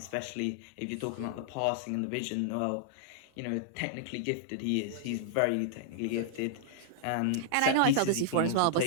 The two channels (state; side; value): different; both; correlation -0.01